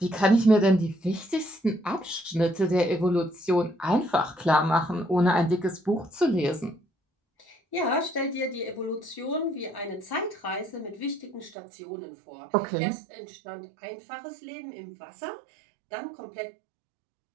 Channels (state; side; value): drops out; left; at 11.6 s